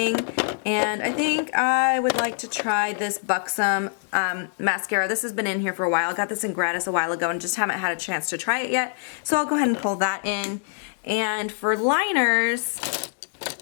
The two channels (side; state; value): right; silent; digital silence